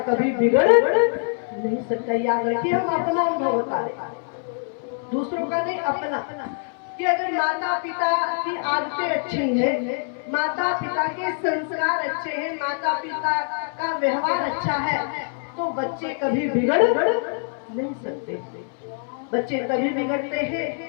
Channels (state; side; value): silent; right; 62 dB below the other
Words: कभी बिगड़ नहीं सकता। याद रखिए, हम अपना अनुभव बता रहे, दूसरों का नहीं, अपना। कि अगर माता पिता की आदतें अच्छी हैं, माता पिता के संस्कार अच्छे हैं, माता पिता का व्यवहार अच्छा है, तो बच्चे कभी बिगड़ नहीं सकते। बच्चे तभी बिगड़ते हैं